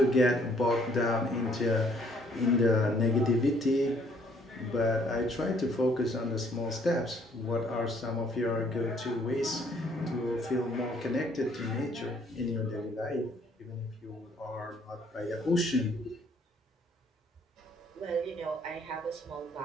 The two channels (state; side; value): normal; both; correlation 0.64